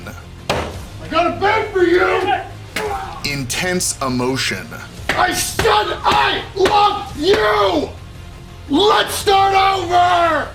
I got a bed for you! intense emotion, I said I love you! Let's start over!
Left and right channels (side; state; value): both; identical; correlation 1.00